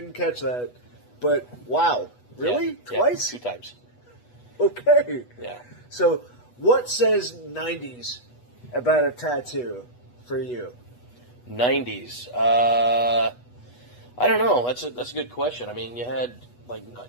catch that. But, wow. Really? Yeah, Twice? 2 times. Okay. Yeah. So, what says 90s about a tattoo for you? 90s. I don't know. That's a good question. I mean, you had, like,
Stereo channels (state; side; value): late; right; 8.2 ms